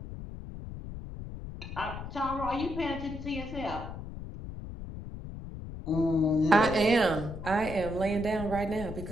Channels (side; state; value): left; noise; rumble, 9 dB below the sound